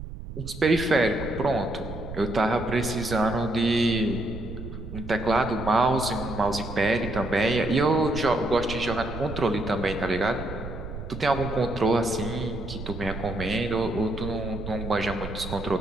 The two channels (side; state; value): right; noise; rumble, 10 dB below the sound